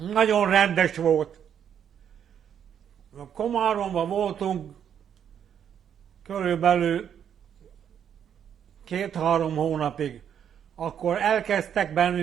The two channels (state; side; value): quieter; left; 8.7 dB